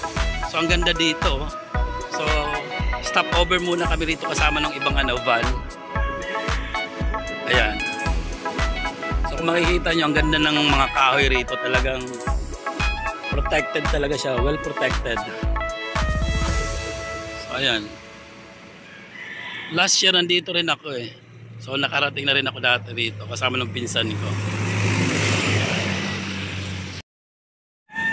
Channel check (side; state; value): both; identical; correlation 1.00